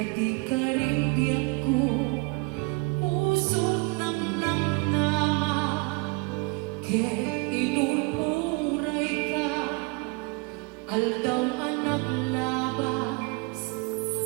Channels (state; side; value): quieter; left; 28.4 dB